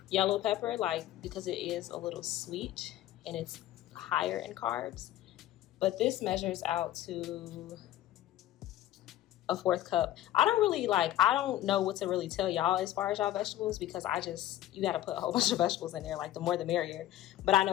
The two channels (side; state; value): right; quieter; 13.8 dB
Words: yellow pepper, like, because it is a little sweet and it's higher in carbs. But this measures out to a 4th cup. I don't know what to really tell y'all as far as y'all vegetables, because you got to put a whole bunch of vegetables in there, like the more the merrier. But I